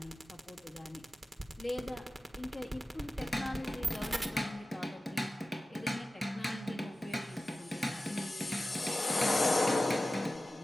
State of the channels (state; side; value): normal; both; correlation 0.95